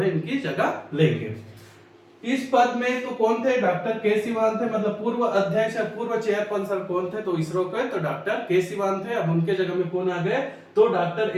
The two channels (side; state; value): both; identical; correlation 1.00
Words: इनकी जगह लेंगे। इस पद में तो कौन थे, डॉक्टर के सिवान थे, मतलब पूर्व अध्यक्ष या पूर्व चेयरपर्सन कौन थे, तो इसरो के तो डॉक्टर के सिवान थे। अब उनके जगह में कौन आ गए, तो डॉक्टर